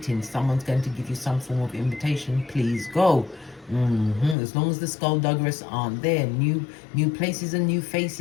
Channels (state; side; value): drops out; right; at 4.4 s